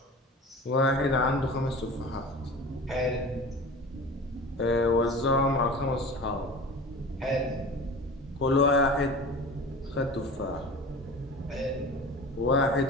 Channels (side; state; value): both; normal; correlation 0.36